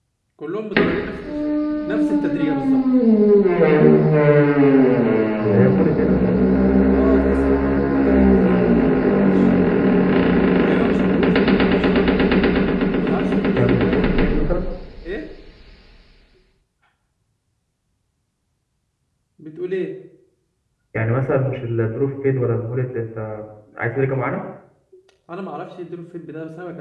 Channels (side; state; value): both; identical; correlation 1.00